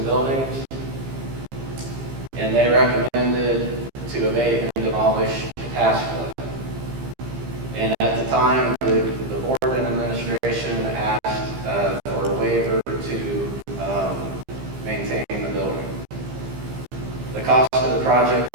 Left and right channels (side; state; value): left; late; 15 ms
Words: buildings, and they recommended to abate and demolish Pataskala. And at the time, the board and administration asked for a waiver to maintain the building. The cost of the project